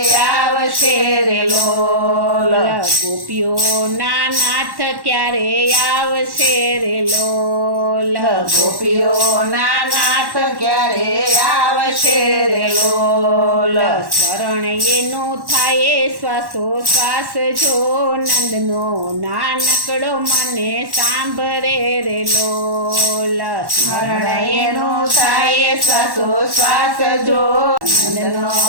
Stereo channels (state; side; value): late; left; 1.1 ms